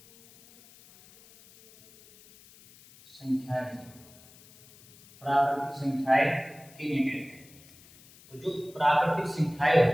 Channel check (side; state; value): left; noise; hiss, 25 dB below the sound